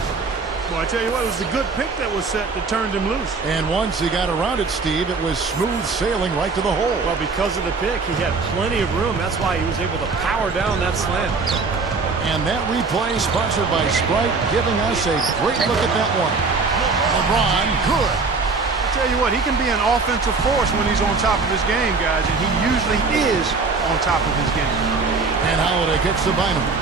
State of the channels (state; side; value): quieter; left; 4.3 dB